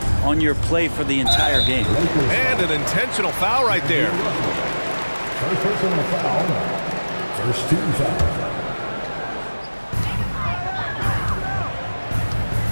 on your play for the entire game. And an intentional foul right there. First personal foul. First team foul.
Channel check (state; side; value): inverted; both; correlation -1.00